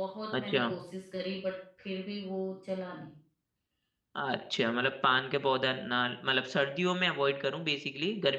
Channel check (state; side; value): identical; both; correlation 1.00